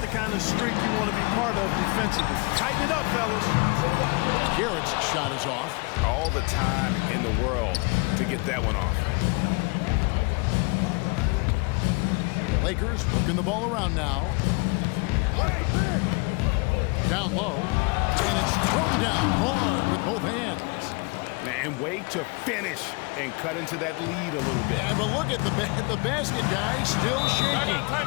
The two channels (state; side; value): quieter; right; 29.8 dB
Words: kind of streak you want to be part of defensively. Tighten it up, fellas. Garrett's shot is off. All the time in the world to get that one off. Lakers working the ball around now. Down low. And it's thrown down hard with both hands. And wait to finish and cut into that lead a little bit. Yeah, but look at the basket guy still shaking.